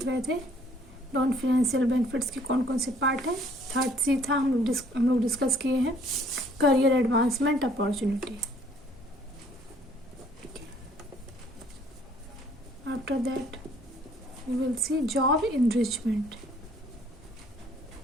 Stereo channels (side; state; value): both; normal; correlation 0.60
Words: रहे थे नॉन फाइनेंशियल बेनिफिट्स के कौन कौन से पार्ट है। थर्ड सी था, हम लोग डिस्कस किए हैं career advancement opportunity. After that we will see job enrichment.